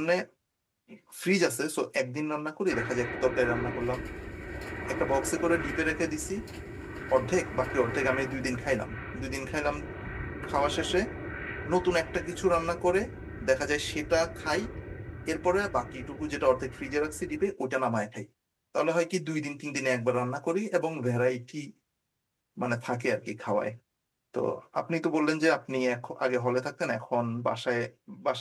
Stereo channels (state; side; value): identical; both; correlation 1.00